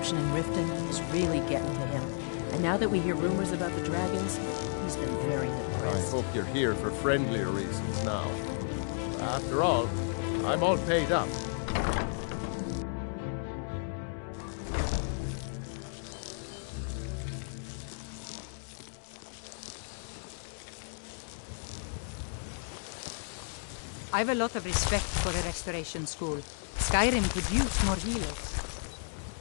in Riften is really getting to him. And now that we hear rumors about the dragons, he's been very depressed. I hope you're here for friendlier reasons now. After all, I'm all paid up. I've a lot of respect for a restoration school. Skyrim could use more healers.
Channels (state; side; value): silent; right; digital silence